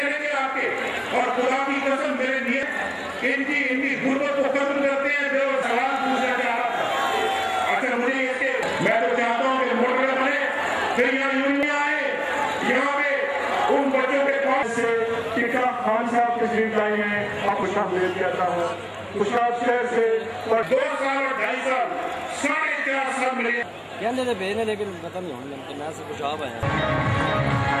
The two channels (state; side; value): identical; both; correlation 1.00